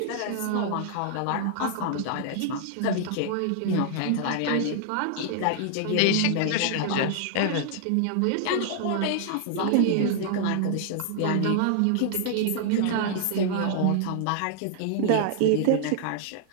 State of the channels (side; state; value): both; different; correlation -0.01